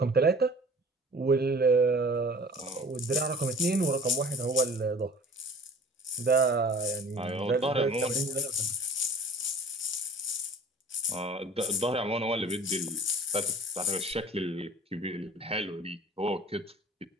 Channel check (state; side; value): normal; both; correlation 0.46